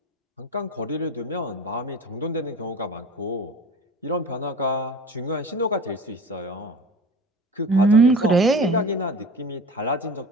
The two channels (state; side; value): normal; both; correlation 0.37